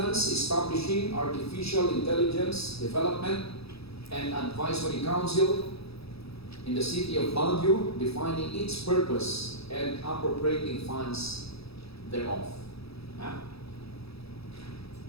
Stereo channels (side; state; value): right; late; 0.77 ms